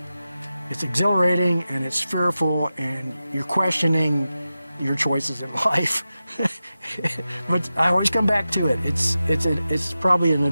exhilarating and it's fearful, and you're questioning your choices in life. But I always come back to it. It's probably an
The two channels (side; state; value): both; inverted; correlation -0.93